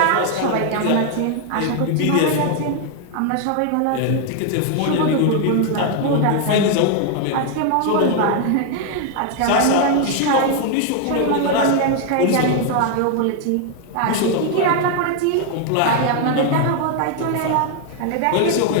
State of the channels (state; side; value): different; both; correlation 0.00